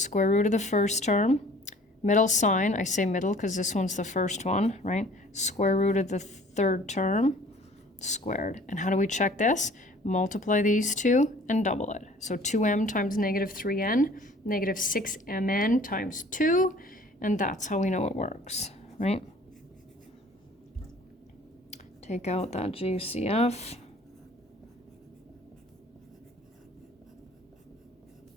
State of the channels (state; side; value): normal; both; correlation 0.51